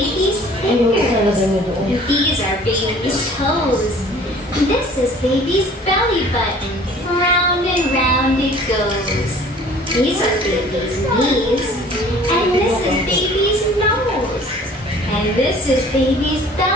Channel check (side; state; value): both; normal; correlation 0.50